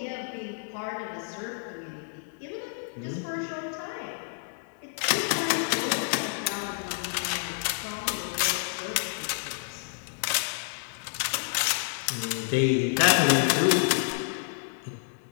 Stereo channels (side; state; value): right; silent; 59 dB below the other